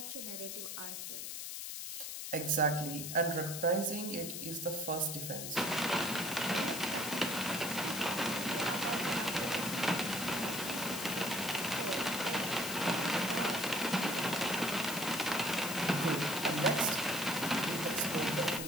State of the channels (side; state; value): left; noise; hiss, 6 dB below the sound